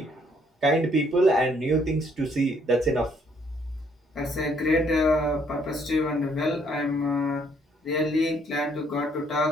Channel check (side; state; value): both; normal; correlation 0.67